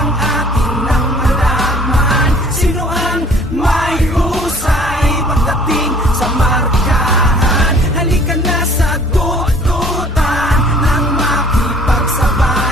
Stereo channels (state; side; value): normal; both; correlation 0.53